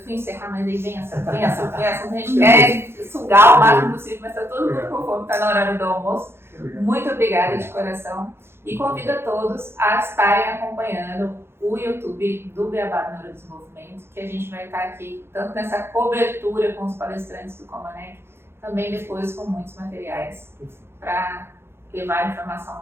fui encerrar, mas aí vem essa, a gente quer sugar o máximo possível, mas está todo mundo com fome, está na hora do almoço. Muito obrigada de coração e convido a todos a estarem acompanhando o YouTube do Beabá do Neurodesenvolvimento, que a gente vai estar aqui tanto nessa cobertura com os palestrantes do Comanec, também depois com muitos materiais para levar a informação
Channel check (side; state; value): left; late; 0.12 ms